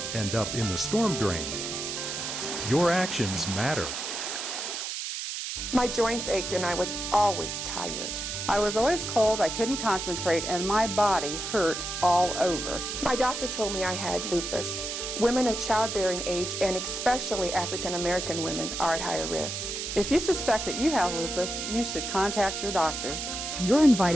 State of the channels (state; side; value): noise; right; hiss, 4 dB below the sound